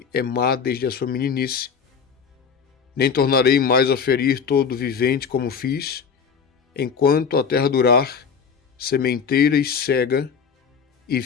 é má desde a sua meninice. Nem tornarei mais a ferir todo vivente como fiz, enquanto a terra durar, sementeira e cega, e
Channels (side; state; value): right; quieter; 6.4 dB